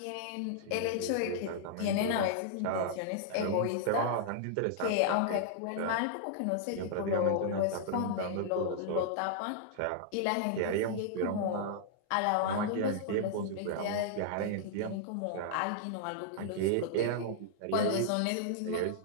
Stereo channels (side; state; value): both; different; correlation -0.01